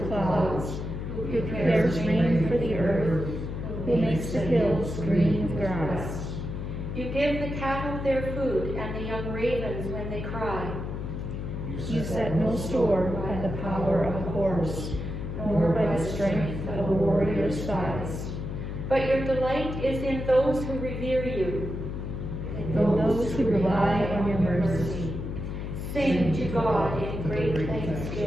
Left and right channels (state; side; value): noise; left; hum, 5 dB below the sound